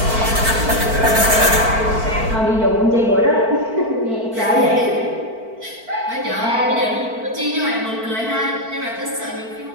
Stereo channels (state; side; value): late; left; 4.5 ms